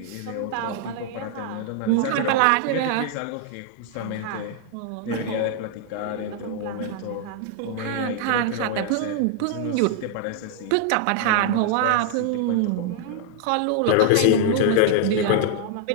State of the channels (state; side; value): different; both; correlation 0.00